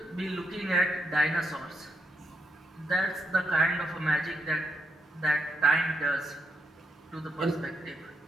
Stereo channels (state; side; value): normal; both; correlation 0.80